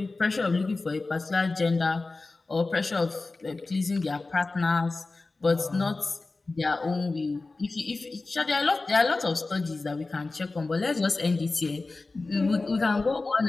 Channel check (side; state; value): right; quieter; 3.5 dB